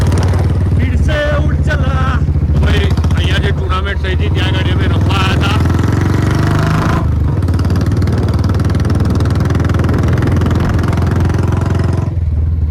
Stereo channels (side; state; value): both; identical; correlation 1.00